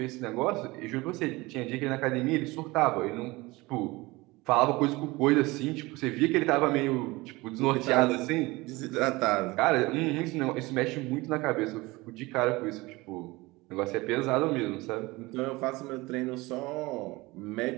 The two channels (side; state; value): left; quieter; 22.0 dB